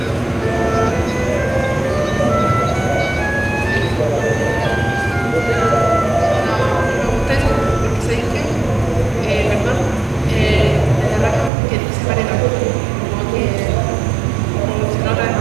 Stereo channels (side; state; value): left; drops out; at 11.5 s